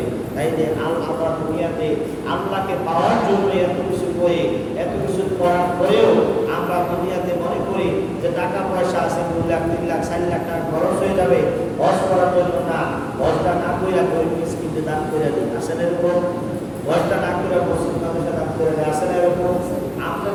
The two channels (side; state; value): both; identical; correlation 1.00